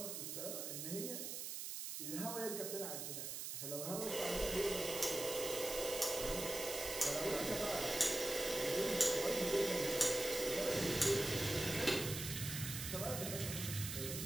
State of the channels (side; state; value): right; noise; hiss, 5 dB below the sound